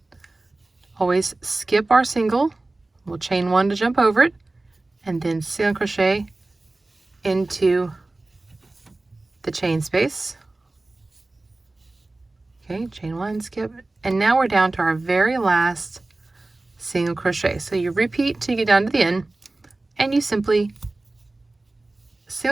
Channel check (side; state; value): left; quieter; 3.0 dB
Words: always skip our single, we'll chain 1 to jump over it, and then single crochet into the chain space. Okay, chain 1, skip, and now we're down to our very last single crochet. So you repeat till you get down to the end, and you simply